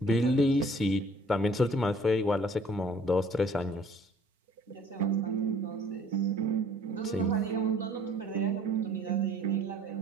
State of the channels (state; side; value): normal; both; correlation 0.55